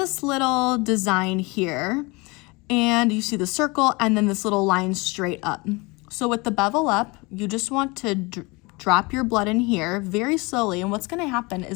little design here, and you see the circle and then this little line straight up. So with the bevel up, you just want to drop your blood in here very slowly, and what's gonna happen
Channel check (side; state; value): right; quieter; 26.1 dB